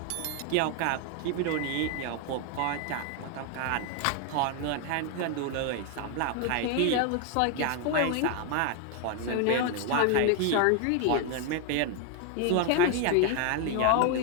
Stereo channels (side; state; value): both; different; correlation 0.00